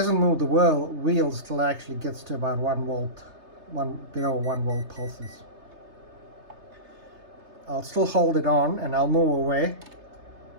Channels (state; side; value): late; left; 3.3 ms